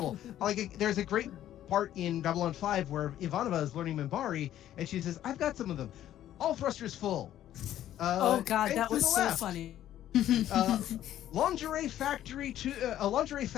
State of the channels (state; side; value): quieter; right; 12.1 dB